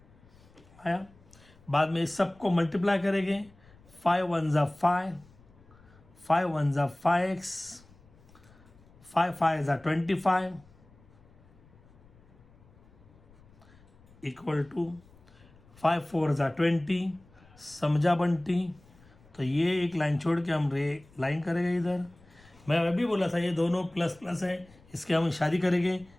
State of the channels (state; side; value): noise; left; rumble, 26 dB below the sound